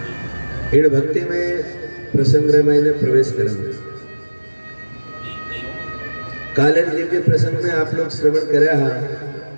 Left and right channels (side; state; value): both; inverted; correlation -1.00